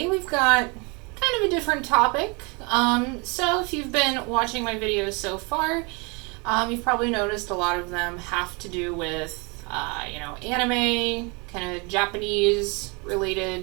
we've got kind of a different topic. So if you've been watching my videos so far, you've probably noticed a lot of them have to do with, anime, kind of Japanese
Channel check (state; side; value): quieter; left; 30.3 dB